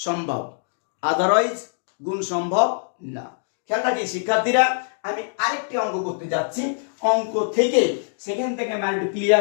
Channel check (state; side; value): silent; right; digital silence